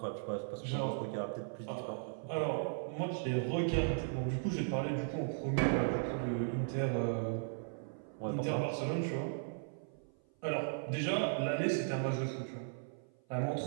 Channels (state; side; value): silent; left; 53 dB below the other